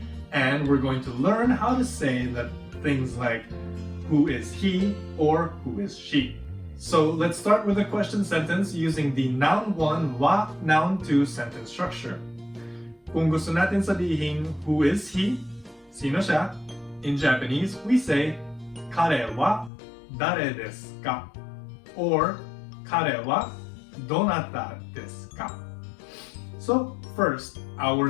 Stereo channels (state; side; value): drops out; right; at 19.7 s